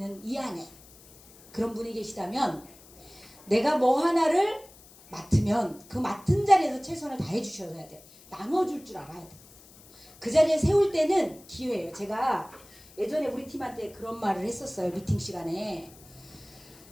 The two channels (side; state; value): left; noise; hiss, 23 dB below the sound